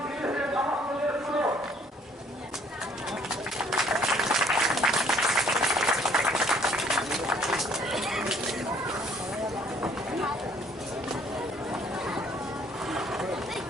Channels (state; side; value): normal; both; correlation 0.61